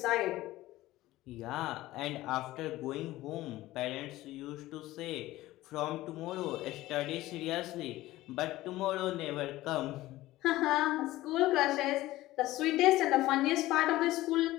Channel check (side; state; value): right; quieter; 16.8 dB